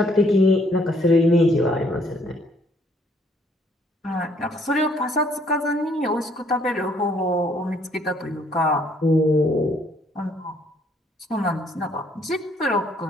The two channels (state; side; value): normal; both; correlation 0.66